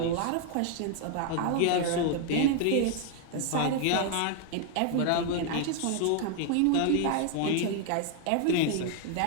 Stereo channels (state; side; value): different; both; correlation 0.00